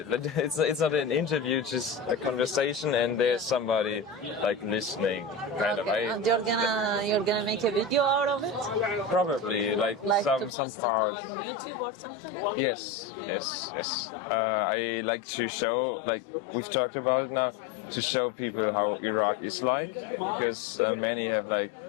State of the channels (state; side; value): drops out; right; at 10.5 s